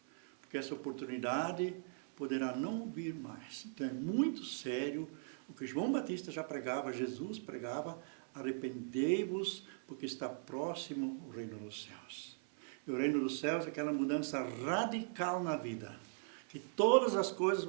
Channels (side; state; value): left; silent; 51 dB below the other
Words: Porque essa oportunidade poderá não vir mais. Então é muito sério o que João Batista já pregava, Jesus pregava, arrependei-vos, porque está próximo o reino dos céus. E o reino dos céus é aquela mudança radical na vida, que todas as coisas